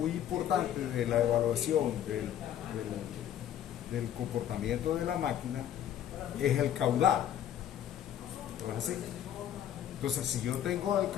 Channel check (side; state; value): right; quieter; 10.4 dB